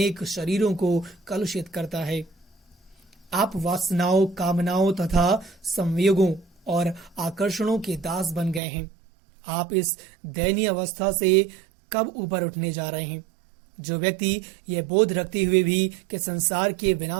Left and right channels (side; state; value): left; drops out; at 8.6 s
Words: शरीरों को कलुषित करता है। आप वासनाओं, कामनाओं तथा संयोगों और आकर्षणों के दास बन गए हैं। आप इस दयनीय अवस्था से कब ऊपर उठने जा रहे हैं? जो व्यक्ति यह बोध रखते हुए भी कि संसार के